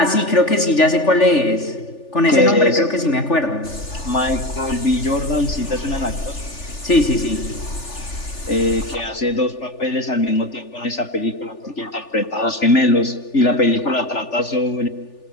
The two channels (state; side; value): late; right; 3.4 ms